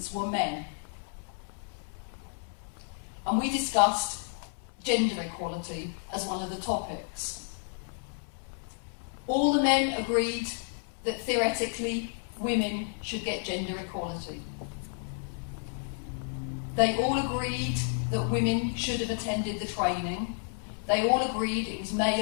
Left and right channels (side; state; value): right; silent; 57 dB below the other